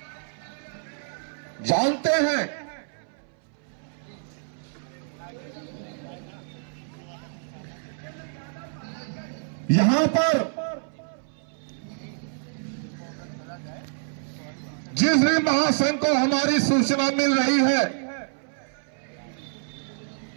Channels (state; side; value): silent; left; 60 dB below the other